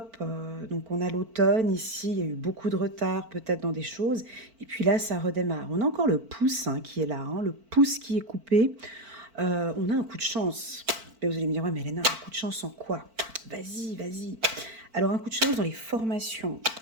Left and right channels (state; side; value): late; left; 4.5 ms